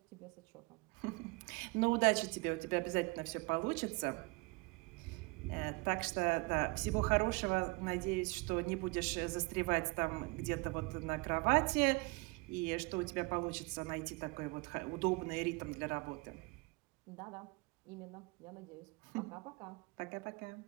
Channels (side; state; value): left; quieter; 26.5 dB